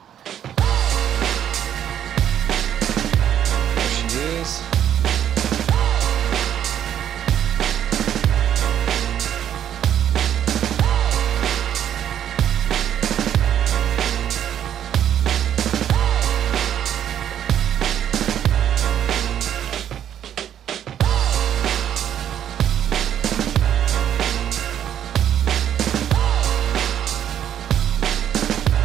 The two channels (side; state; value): left; quieter; 10.0 dB